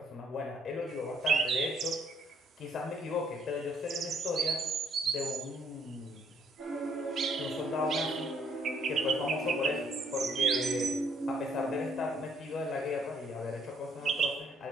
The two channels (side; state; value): both; normal; correlation 0.67